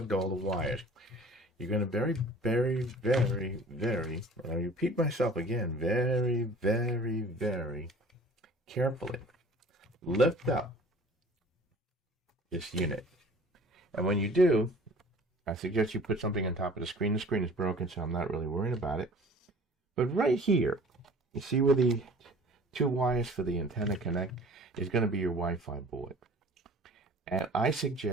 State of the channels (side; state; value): both; normal; correlation 0.47